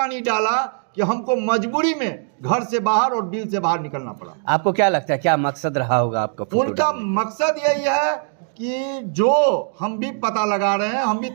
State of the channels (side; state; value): left; silent; 65 dB below the other